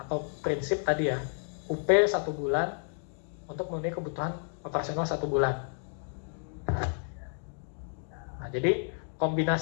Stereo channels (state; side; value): silent; right; 57 dB below the other